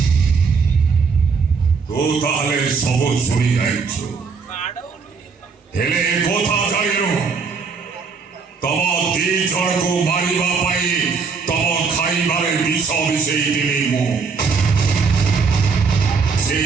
ତୁ ତାହେଲେ ସବୁ ଶୁଣି ଯାଇଛୁ, ହେଲେ ଏ କଥା ଜାଣିନୁ ତମ ଦି ଜଣକୁ ମାରିବା ପାଇଁ ତମ ଖାଇବାରେ ବିଷ ମିଶେଇଥିଲି ମୁଁ।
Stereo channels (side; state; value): left; quieter; 5.2 dB